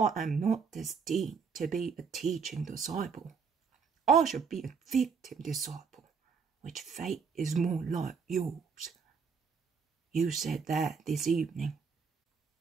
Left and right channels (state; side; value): quieter; left; 5.7 dB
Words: am not destined to be a teaching disciple, I shall be a victim disciple, which fate is more like yours. You said that this evening.